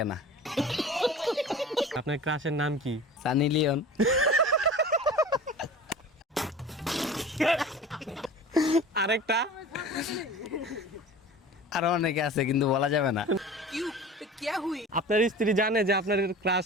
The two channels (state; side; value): normal; both; correlation 0.38